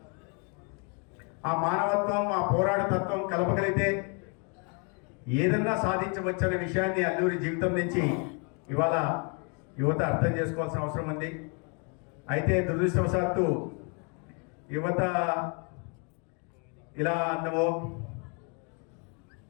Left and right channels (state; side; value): quieter; right; 36.4 dB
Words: ఆ మానవత్వం ఆ పోరాటతత్వం కలపగలిగితే ఏదన్నా సాధించవచ్చనే విషయాన్ని అల్లూరి జీవితం నుంచి ఇవాళ యువత అర్థం చేసుకోవాల్సిన అవసరం ఉంది. అయితే దురదృష్టవశాత్తు యువత ఇలా అన్నమో